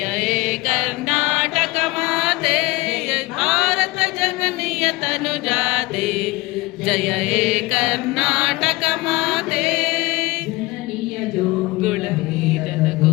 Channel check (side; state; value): right; quieter; 21.5 dB